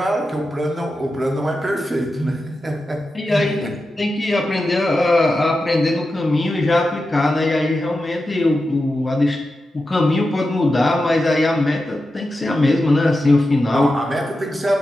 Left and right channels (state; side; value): normal; both; correlation 0.91